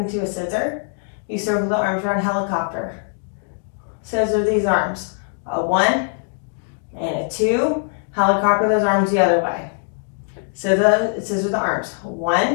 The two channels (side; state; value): right; silent; 65 dB below the other